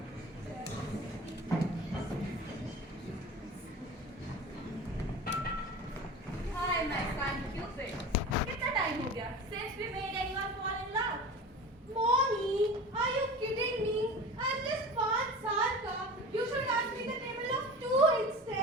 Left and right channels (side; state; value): both; normal; correlation 0.35